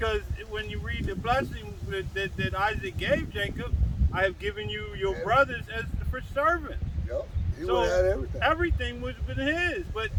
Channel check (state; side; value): identical; both; correlation 1.00